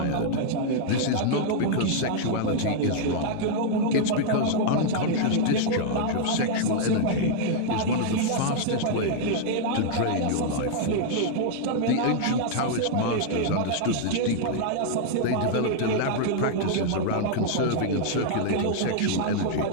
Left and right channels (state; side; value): different; both; correlation -0.01